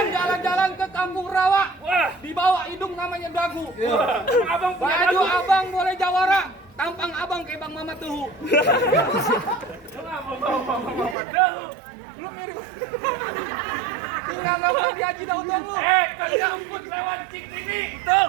jalan-jalan ke Kampung Rawa. Wah, Dibawa hidung namanya dagu. wah, abang punya Baju dagu. abang boleh jawara. Tampang abang kayak Bang Mama Tuhu. Kenapa bawa dahu? Lu mirip. Tinggal nggak di Haji Daud dong lu. Kalau rumput lewat cik ini, betul.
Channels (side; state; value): left; drops out; at 11.2 s